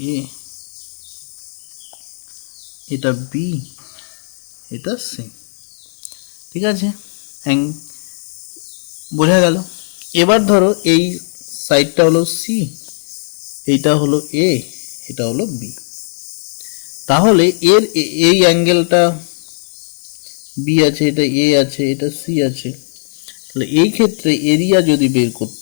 এ, এটা বি, এটা সি, ঠিক আছে, বোঝা গেল। এবার ধরো এই সাইডটা হলো সি, এইটা হলো এ, এটা হলো বি। তাহলে এর এই অ্যাঙ্গেলটা বি আছে, এটা এ আছে, এটা সি আছে। তাহলে এই ক্ষেত্রে এরিয়া যদি বের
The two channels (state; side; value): silent; right; digital silence